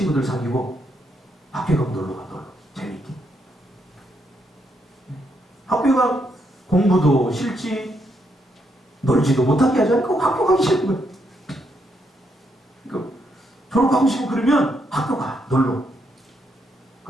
사귀고 학교에 가면 놀러 가. 놀러. 재밌게. 학교가 공부도 싫지 놀지도 못하게 하지 않고 학교 가기 싫은 거예요. 그러니까 졸업하고 싶고 그러면 학교 가. 놀러.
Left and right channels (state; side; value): normal; both; correlation 0.77